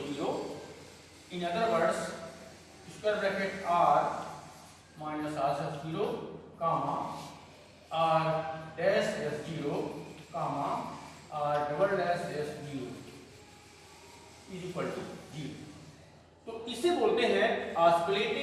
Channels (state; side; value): identical; both; correlation 1.00